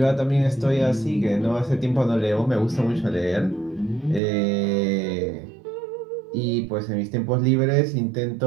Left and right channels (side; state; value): left; drops out; at 4.2 s